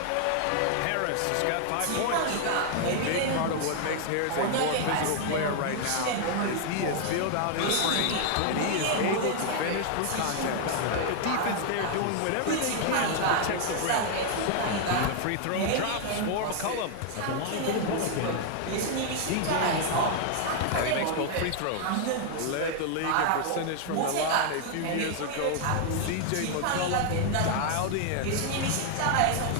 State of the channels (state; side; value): different; both; correlation 0.00